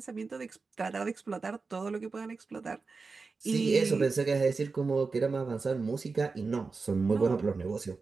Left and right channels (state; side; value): quieter; left; 4.3 dB